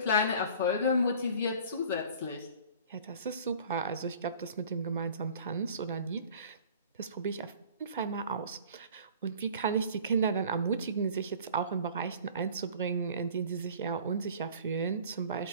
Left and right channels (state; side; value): inverted; both; correlation -0.46